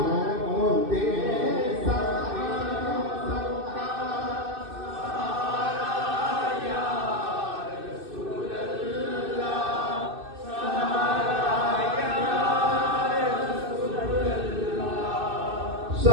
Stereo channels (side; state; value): left; late; 2.6 ms